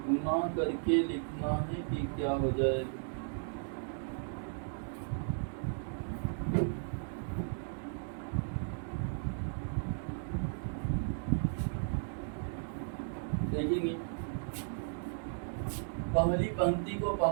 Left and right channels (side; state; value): left; silent; digital silence